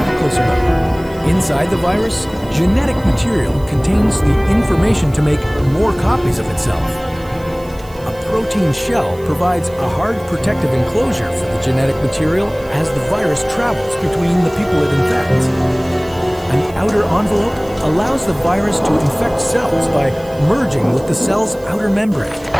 a closer look. Inside the virus, genetic material contains the information to make more copies of itself. A protein shell provides a hard protective enclosure for the genetic material as the virus travels between the people it infects. An outer envelope allows the virus to infect cells by merging with the cell's outer membrane.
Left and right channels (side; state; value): right; noise; hiss, 24 dB below the sound